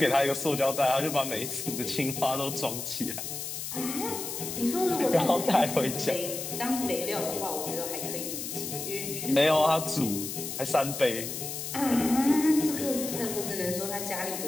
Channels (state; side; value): noise; left; hiss, 6 dB below the sound